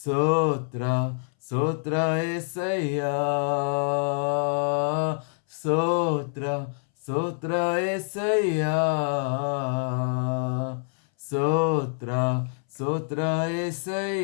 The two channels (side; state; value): right; silent; 61 dB below the other